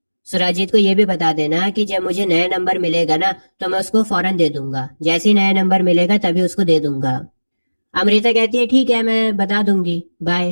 सुराजीत को यह भी बता देना कि जब मुझे नया नंबर मिलेगा ना, तो मैं उसको फौरन दे दूंगा। जैसे ही नया नंबर मिलेगा तभी उसको दे दूंगा। अमृता कहती है ठीक है, मैं बता दूंगी,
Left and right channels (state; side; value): inverted; both; correlation -1.00